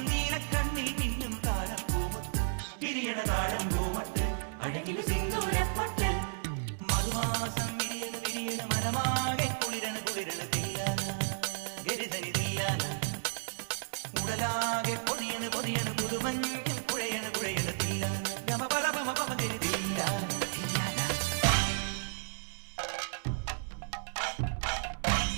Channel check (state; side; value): silent; left; digital silence